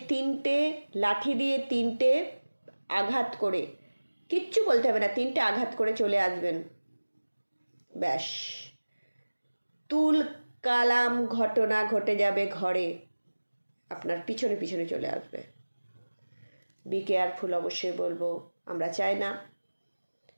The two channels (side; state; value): both; inverted; correlation -1.00